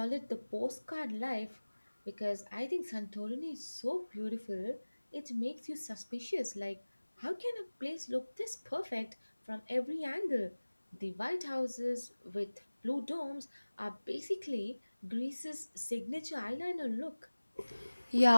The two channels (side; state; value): both; inverted; correlation -1.00